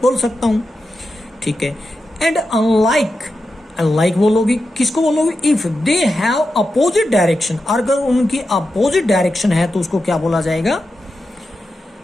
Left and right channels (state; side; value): normal; both; correlation 0.90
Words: बोल सकता हूं, ठीक है। एंड अनलाइक, अनलाइक बोलोगे, किसको बोलोगे? If they have opposite direction, अगर उनकी अपोजिट डायरेक्शन है तो उसको क्या बोला जाएगा?